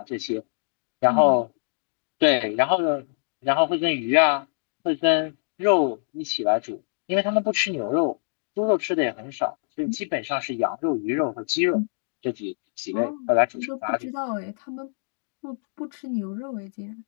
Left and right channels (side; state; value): right; silent; digital silence